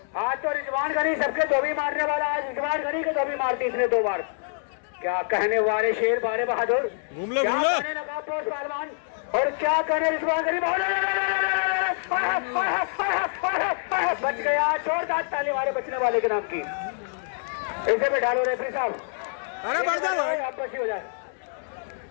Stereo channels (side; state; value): right; silent; digital silence